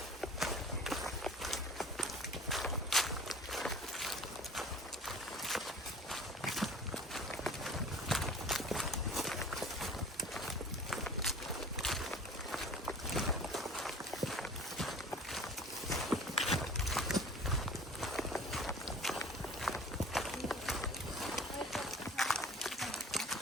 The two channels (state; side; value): normal; both; correlation 0.44